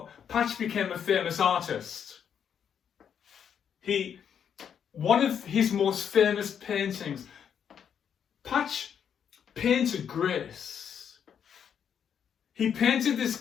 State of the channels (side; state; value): right; quieter; 8.1 dB